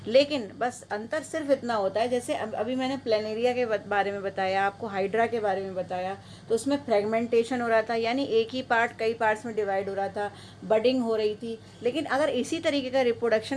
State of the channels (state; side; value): identical; both; correlation 1.00